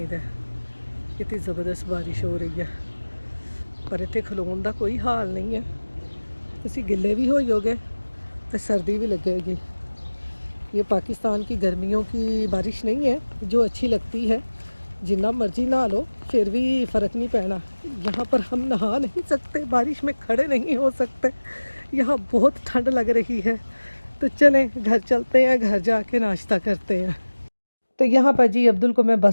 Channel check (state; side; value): inverted; both; correlation -1.00